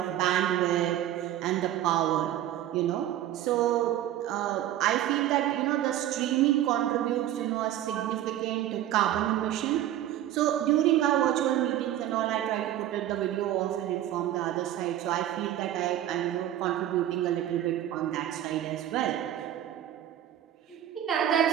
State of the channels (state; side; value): quieter; left; 12.4 dB